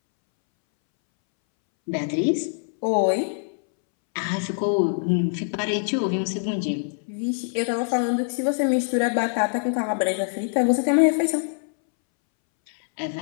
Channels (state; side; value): silent; right; 63 dB below the other